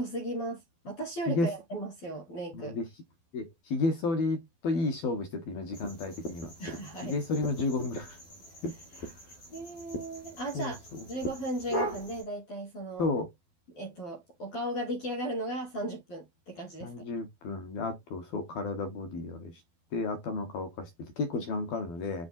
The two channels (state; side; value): late; right; 12 ms